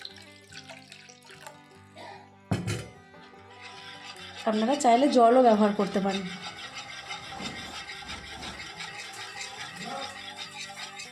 আপনারা চাইলে জলও ব্যবহার করতে পারেন।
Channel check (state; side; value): identical; both; correlation 1.00